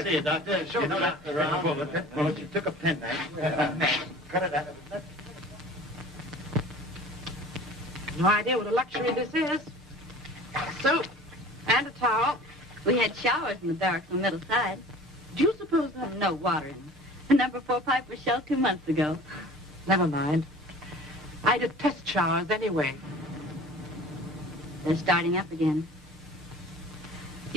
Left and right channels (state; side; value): normal; both; correlation 0.44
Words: see you, Doctor. Show the doctor around. Well, she took a penknife. Cut it out of it. No idea what a luxury this is. Soap and a towel. We had showers in the barracks on the middle side. Do you suppose that... No water in them. The number 4 pipe was shelled 2 months ago. Never mind. I did test showers anyway. They're starting up again.